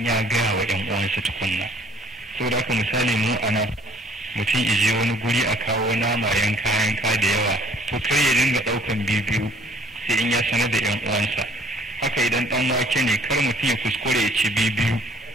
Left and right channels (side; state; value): both; normal; correlation 0.58